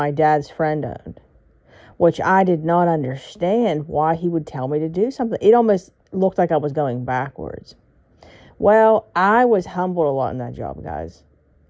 dad's friend owned, which I did not understand why he would tell me to do something. It almost looked like I was going backwards. Well, I was humbled a lot in that job, guys.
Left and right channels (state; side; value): identical; both; correlation 1.00